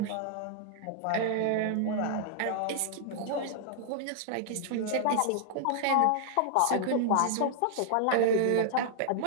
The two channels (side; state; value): both; different; correlation -0.01